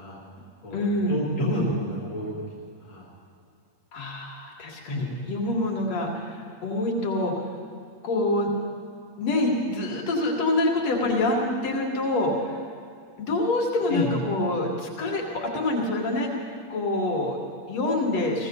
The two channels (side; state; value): right; late; 8.5 ms